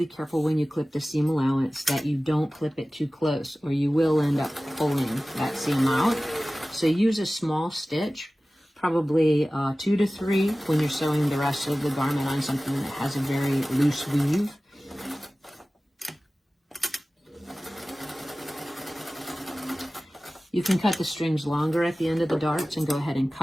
careful when you clip the seam allowance that you don't clip it too close, or you will end up pulling that seam out. So use a small stitch, probably 2 to 3 when you're sewing the rest of the garment on something that has a very loose weave. You can cut the strings longer at the end of the darts and go ahead and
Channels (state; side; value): normal; both; correlation 0.97